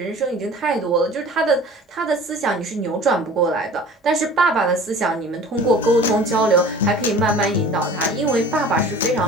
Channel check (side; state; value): both; normal; correlation 0.43